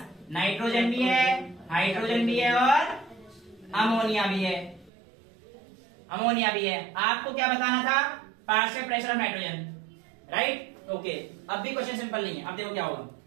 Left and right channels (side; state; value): left; drops out; at 4.9 s